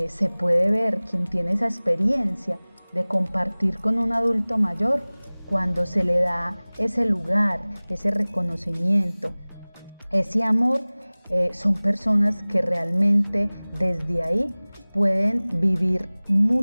puede ver quien tiene esa experiencia de compartir con un adulto mayor cuando se le da ese lugar, ese reconocimiento, ese amor. Son personas que realmente desde ahí pueden vivir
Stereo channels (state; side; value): inverted; both; correlation -1.00